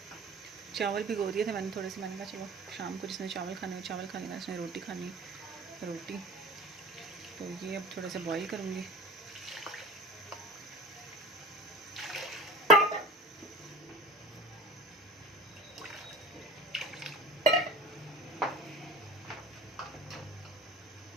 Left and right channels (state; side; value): normal; both; correlation 0.37